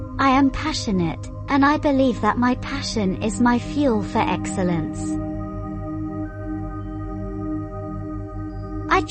I am passionate, and I believe that my passion is my fuel for excellence. I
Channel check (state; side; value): identical; both; correlation 1.00